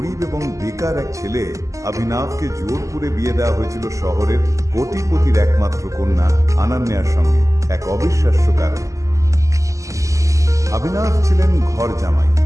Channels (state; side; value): late; left; 0.16 ms